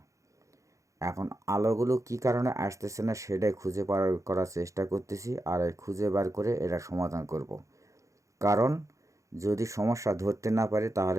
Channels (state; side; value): late; left; 0.15 ms